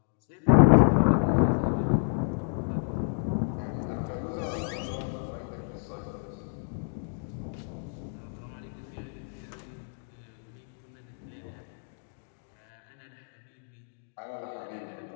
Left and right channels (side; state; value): right; silent; digital silence